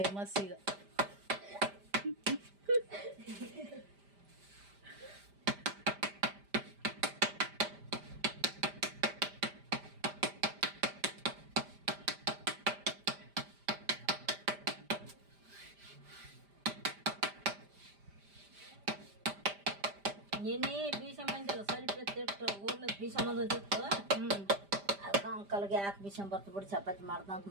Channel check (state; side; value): late; left; 5.0 ms